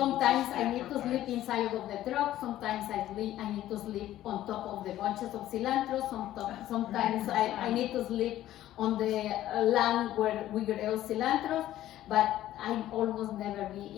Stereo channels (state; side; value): quieter; right; 13.5 dB